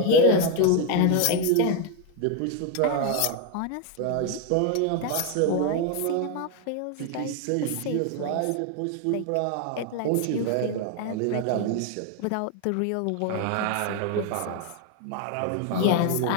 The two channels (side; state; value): both; different; correlation 0.01